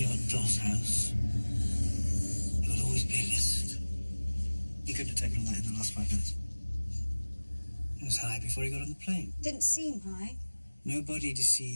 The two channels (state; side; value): inverted; both; correlation -1.00